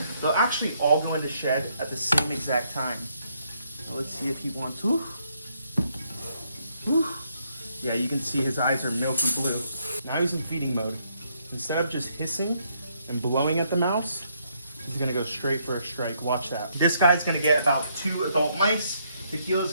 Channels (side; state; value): both; inverted; correlation -0.72